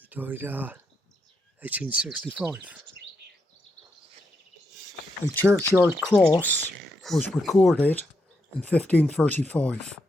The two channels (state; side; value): normal; both; correlation 0.82